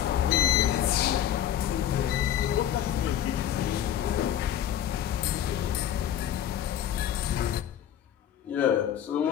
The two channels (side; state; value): right; quieter; 10.6 dB